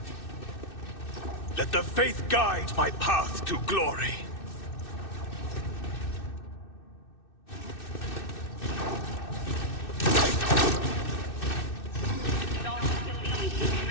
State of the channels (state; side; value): late; right; 2.6 ms